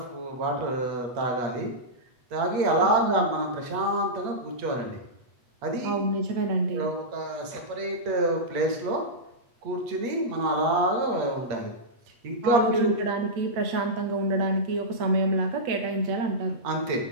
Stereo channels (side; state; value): left; late; 8.2 ms